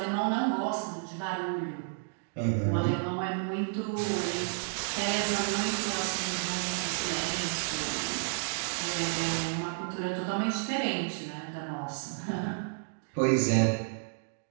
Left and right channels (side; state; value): left; silent; digital silence